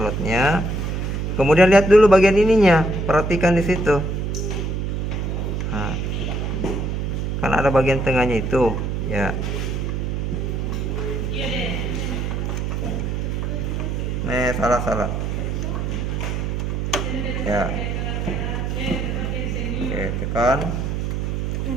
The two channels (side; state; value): right; noise; hum, 1 dB below the sound